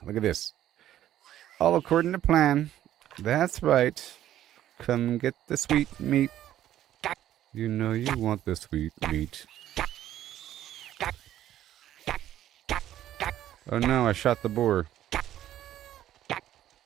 look at this. All according to plan. That's right. Come get the sweet meat. You know you want the sweet meat. Oh no, I shot the boar.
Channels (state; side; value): quieter; left; 12.3 dB